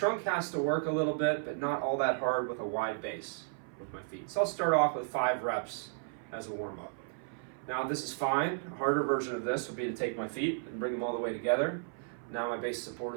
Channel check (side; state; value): left; silent; 55 dB below the other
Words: has to work a little bit, but not all that hard with a wide base with my feet. So I'll start off with 5 reps as a warm-up. Now this is fine. A harder version of this would be to take my feet and bring them all the way together. Now my base support